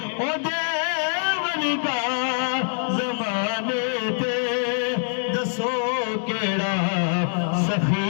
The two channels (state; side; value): silent; right; digital silence